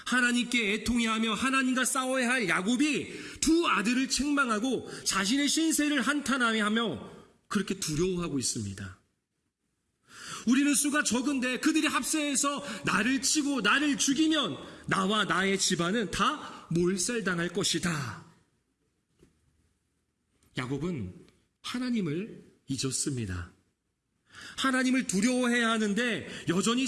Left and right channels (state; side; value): identical; both; correlation 1.00